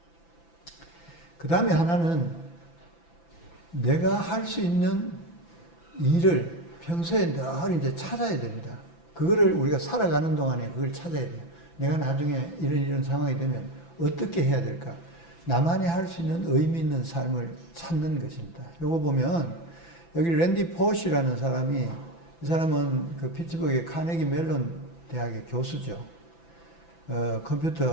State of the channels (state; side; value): late; right; 5.9 ms